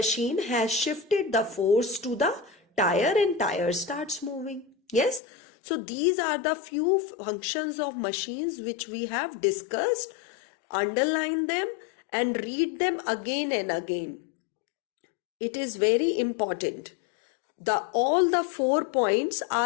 has shifted the force to the tyre and tyre starts moving. Yes. So these are the few functions of machines which we have discussed. Underline them and read them again and again. It is very important. All the 4 points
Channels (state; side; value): drops out; right; at 5.2 s